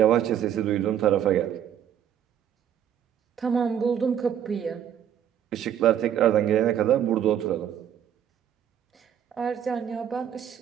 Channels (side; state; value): left; quieter; 9.7 dB